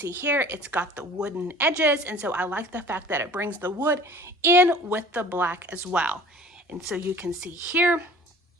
here it's got the wooden edges, and so I like the fact that it brings the wood in with the black as well. And so you can see here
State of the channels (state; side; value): normal; both; correlation 0.46